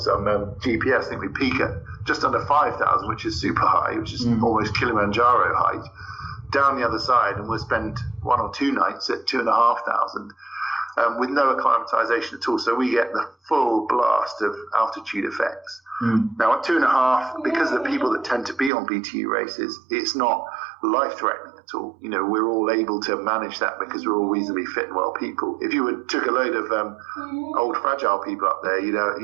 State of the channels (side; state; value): left; drops out; at 18.7 s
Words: on GPS. I think we peak at just under 5,000, which is super high, which is almost Kilimanjaro height. Down the other side, and we'll spend 1 or 2 nights at 2,500 with no acclimatization at all. So we get the full blast of altitude effects. Now at 2.5, because of the people that tend to be on BTU races, it's not life-threatening at all. You know, we're all able to manage that because we're all reasonably fit and well people. If you took a load of old fragile people up there,